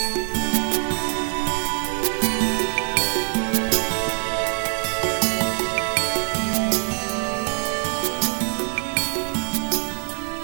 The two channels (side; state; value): left; silent; digital silence